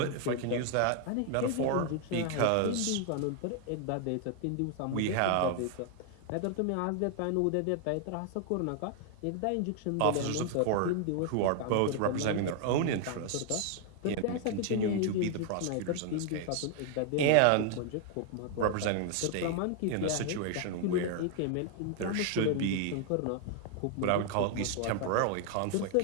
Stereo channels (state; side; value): different; both; correlation 0.00